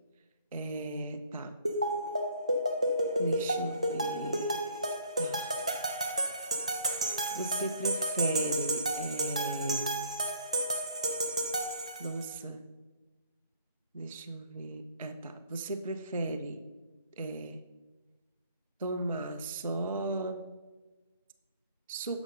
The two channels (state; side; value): inverted; both; correlation -0.58